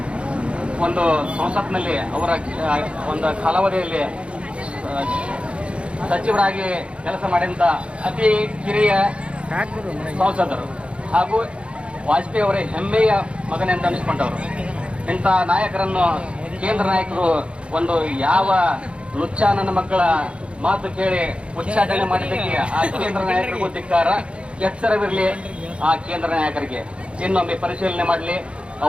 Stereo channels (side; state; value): left; late; 0.059 ms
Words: ಒಂದು ಸಂಸತ್ನಲ್ಲಿ ಅವರ ಒಂದು ಕಾಲಾವಧಿಯಲ್ಲಿ ಸಚಿವರಾಗಿ ಕೆಲಸ ಮಾಡಿದಂಥ ಅತಿ ಕಿರಿಯ ಸಂಸದರು ಹಾಗೂ ವಾಜಪೇಯಿ ಅವರೇ ಹೆಮ್ಮೆಯ ಮಗನೆಂದು ಅನಿಸ್ಕೊಂಡವರು. ಇಂಥ ನಾಯಕರನ್ನು ಕೇಂದ್ರ ನಾಯಕರು ಒಂದು ಯಾವ ಲುಚ್ಚ ನನ್ನ ಮಕ್ಕಳ ಮಾತು ಕೇಳಿ ಉಚ್ಚಾಟನೆ ಮಾಡಿದ್ದಕ್ಕೆ ಆ ಕೇಂದ್ರ ನಾಯಕರಿಗೂ ಧಿಕ್ಕಾರ, ಎಚ್ಚರವಿರಲಿ ಆ ಕೇಂದ್ರ ನಾಯಕರಿಗೆ. ಇನ್ನೊಮ್ಮೆ ಪರಿಶೀಲನೆ ಮಾಡಲಿ.